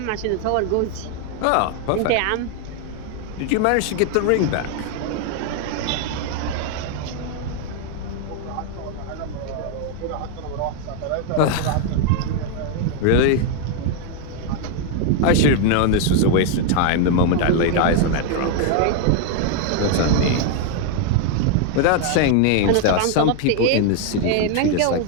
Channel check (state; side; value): different; both; correlation 0.01